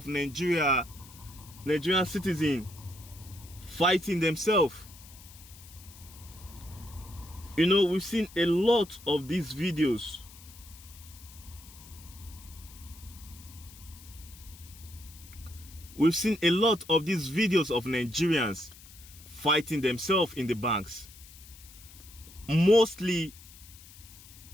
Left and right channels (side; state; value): left; noise; hiss, 20 dB below the sound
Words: Nigerian citizens fighting themselves. We've seen a lot of these videos. We've seen a lot of these videos of Nigerians fighting themselves in the banks. Mostly